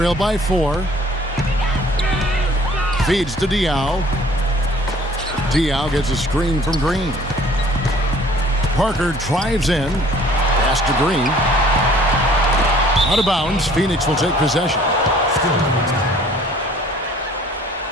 by 4. Feeds to Diaw. Diaw gets a screen from Green. Parker drives in. Pass to Green. Out of bounds. Phoenix will take possession.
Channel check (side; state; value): both; normal; correlation 0.54